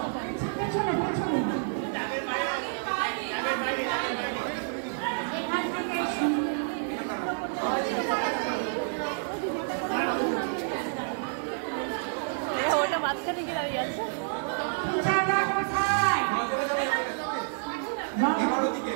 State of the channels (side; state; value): left; silent; 59 dB below the other